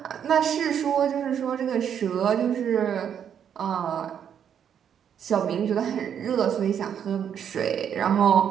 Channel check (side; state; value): left; quieter; 8.5 dB